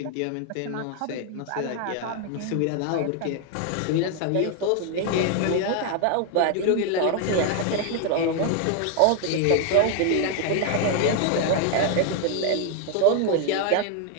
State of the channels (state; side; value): different; both; correlation 0.01